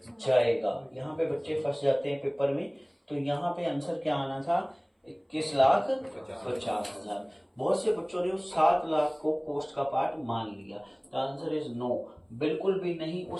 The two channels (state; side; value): identical; both; correlation 1.00